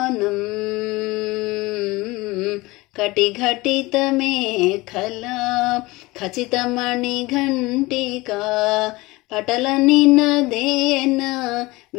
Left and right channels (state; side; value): quieter; right; 21.5 dB